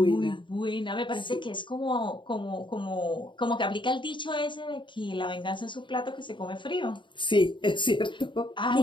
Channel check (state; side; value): late; right; 0.23 ms